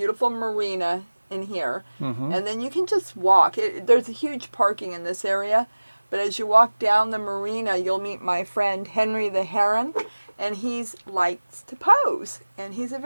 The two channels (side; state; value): both; inverted; correlation -1.00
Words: marina in here, and then you can just walk. There's a huge parking in this area, but as you walk down the marina, you'll meet my friend Henry the Heron, and he likes to pose, and he's a